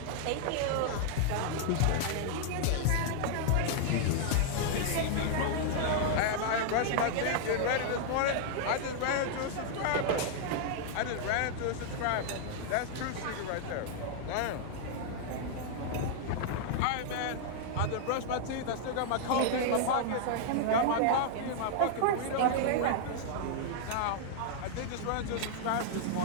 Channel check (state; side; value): different; both; correlation -0.01